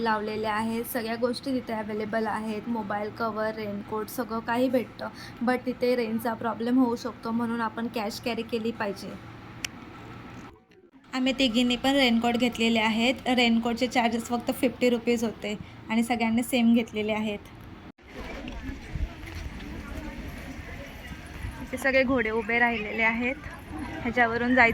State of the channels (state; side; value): identical; both; correlation 1.00